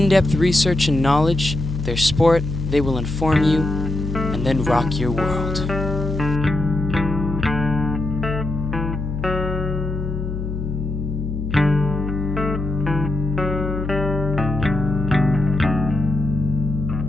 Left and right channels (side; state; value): left; noise; hum, 4 dB below the sound